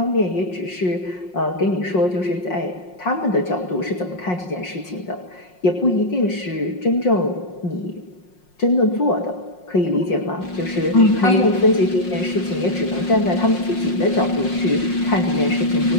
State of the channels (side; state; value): right; late; 5.5 ms